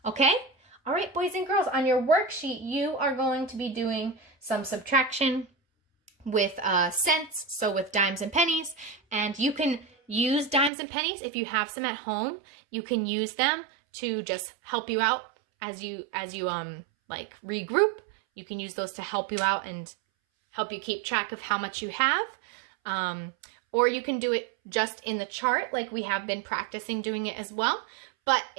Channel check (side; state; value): left; drops out; at 10.7 s